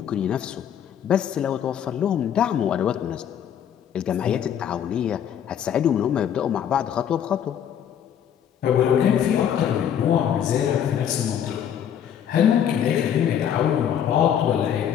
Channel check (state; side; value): quieter; right; 9.2 dB